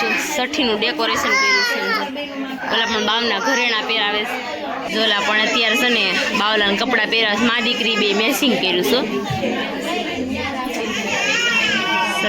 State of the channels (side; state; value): both; identical; correlation 1.00